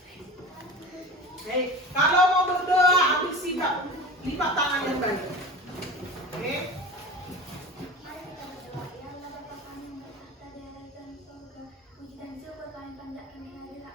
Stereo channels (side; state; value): both; normal; correlation 0.33